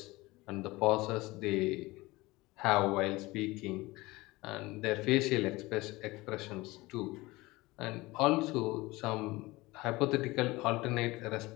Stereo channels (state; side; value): quieter; right; 21.0 dB